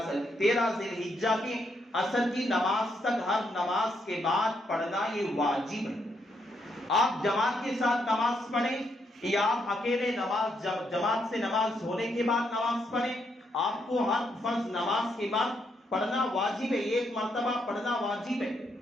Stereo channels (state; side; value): normal; both; correlation 0.77